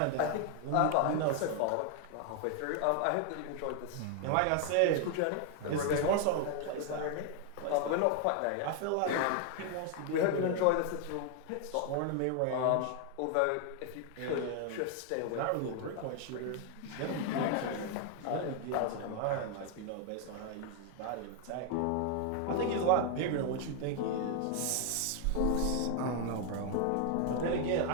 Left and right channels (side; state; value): both; different; correlation 0.00